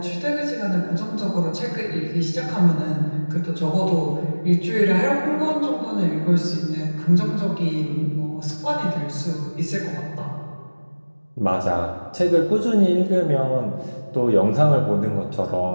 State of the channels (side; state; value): both; inverted; correlation -1.00